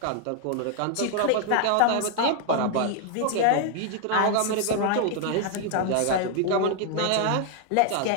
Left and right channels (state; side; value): different; both; correlation 0.01